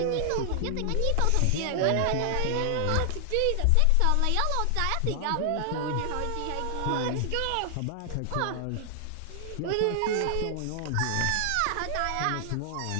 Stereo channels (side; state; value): both; different; correlation 0.00